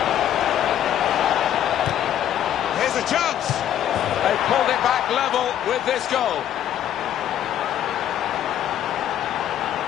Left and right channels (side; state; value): right; quieter; 10.9 dB